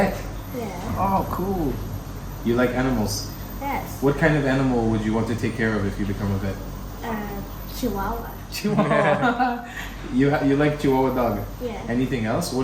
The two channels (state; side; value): identical; both; correlation 1.00